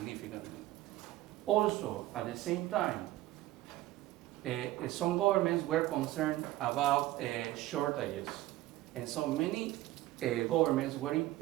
Also, at the same time, some governments were concerned about shortages. And so many governments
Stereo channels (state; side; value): quieter; left; 16.1 dB